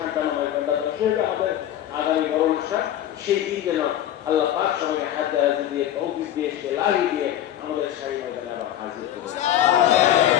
আমাদের আগামী বড় অনুষ্ঠান, সেই দিন যেন আল্লাহ পাক সবাইকে হাত দ্বারা দিয়ে তৌফিক দিয়ে লাহি দিয়ে আমাদের শাহী ময়দানে আবার হাজির করে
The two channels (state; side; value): quieter; right; 11.7 dB